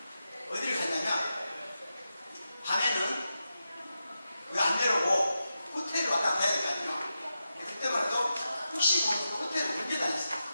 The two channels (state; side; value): inverted; both; correlation -0.89